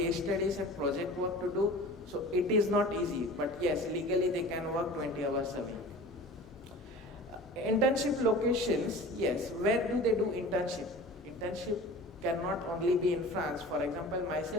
studies and project work to do. So it is not easy, but yes, legally they can work 20 hours a week. Internship locations, yes, where do they do internship? Internship cannot only be in France. For example,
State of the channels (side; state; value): both; normal; correlation 0.39